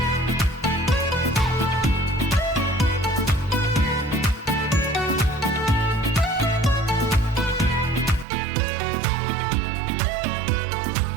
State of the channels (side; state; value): left; drops out; at 8.2 s